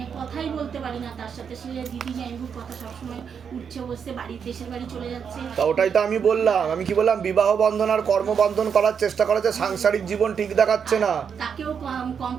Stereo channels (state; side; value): quieter; left; 7.0 dB